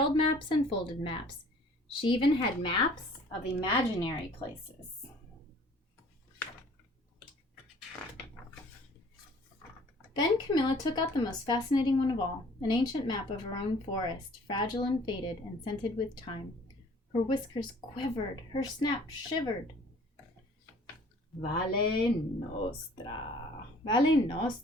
maps and folded maps. She even had maps of imaginary places. Then Camilla took out the most fascinating one of all, an ancient map of her own forest, fragile and faded and scented with time. Her whiskers quivered, her snout shivered. Valle Nostra. Valle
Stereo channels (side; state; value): both; normal; correlation 0.53